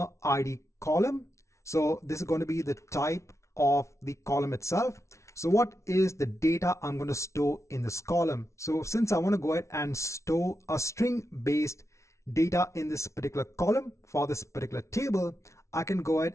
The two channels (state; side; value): late; right; 0.14 ms